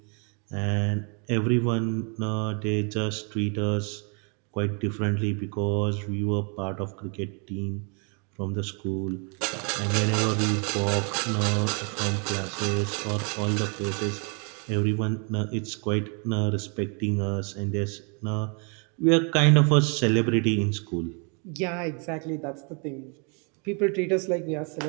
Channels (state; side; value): quieter; left; 36.6 dB